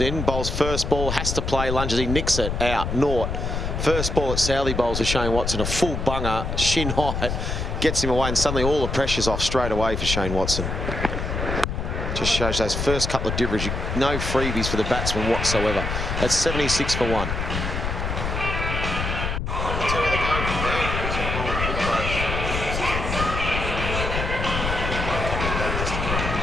bowls first ball, has to play, lunges, he nicks it out, naught. First ball at Southey bowls to Shane Watson, a full bunger, shin height, gets him away, and suddenly all the pressure's off straight away for Shane Watson. Just shows those first couple of deliveries, no freebies for the batsman whatsoever. That's 76 for 1.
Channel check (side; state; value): left; noise; rumble, 3 dB below the sound